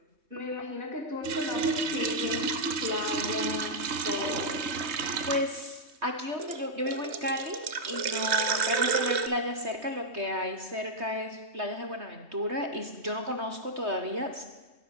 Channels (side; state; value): left; late; 3.2 ms